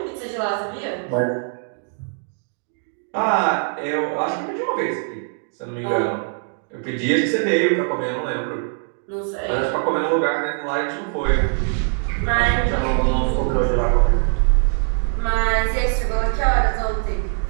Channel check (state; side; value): silent; left; 57 dB below the other